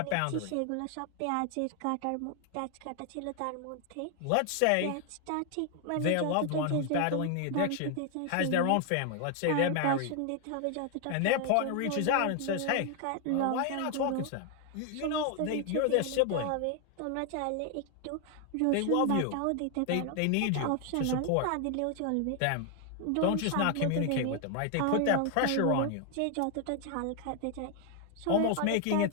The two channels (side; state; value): both; different; correlation 0.00